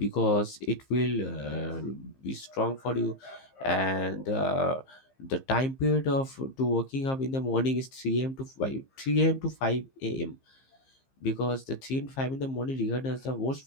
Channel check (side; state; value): right; late; 15 ms